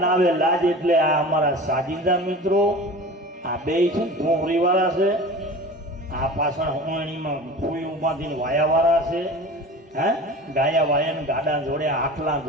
ના આવે લાજ. એટલે આ અમારા સાજિંદા મિત્રો આ બે છે ધોરી વાળા છે, આ પાછળ હોણીમાં ફૂયું બાંધીને વાયા વાળા છે, હે ગાયા વાયા ગાડા જોડ્યા આખલા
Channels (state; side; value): normal; both; correlation 0.36